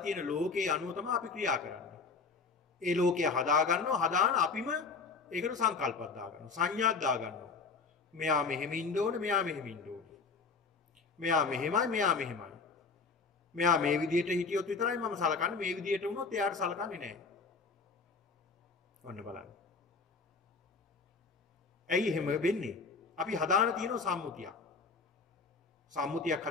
තියෙන ලෝකේ අනුව තමයි අපි ක්‍රියා කරන්නේ. ඒ ලෝකය හදා ගන්නවා. හදාන අපිම ඒකට සංකල්පයක් දාගන්නවා. සංඥාවක් දාගන්නවා. මෙයා මෙහෙම ඉන්න ඕනේ, මෙයා මෙහෙම ඉන්න ඕනේ. මෙයා මෙහෙමයි, මෙයා මෙහෙමයි. මෙයා මේ විදිහට හිටියොත් විතරයි මම සලකන්නේ. මේ විදිහට වුණොත් එයාට සලකන්නේ නැහැ. ඔන්න බලන්න. ඇයි එහෙම වෙන්නේ? අපි හදාන තියෙන සම්මුතියක්. සම්මුතියක්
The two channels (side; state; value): right; quieter; 4.6 dB